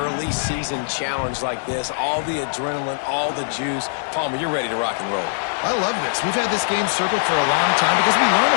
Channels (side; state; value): right; silent; digital silence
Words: season challenge like this, all the adrenaline, all the juice, Palmer, you're ready to rock and roll. I love this. We've had this game circled for a long time because we learn